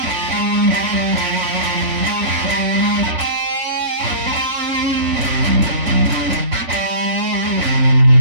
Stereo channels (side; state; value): left; late; 4.4 ms